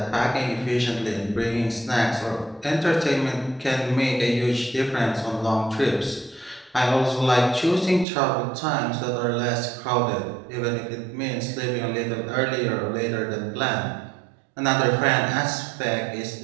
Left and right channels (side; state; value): left; drops out; at 8.1 s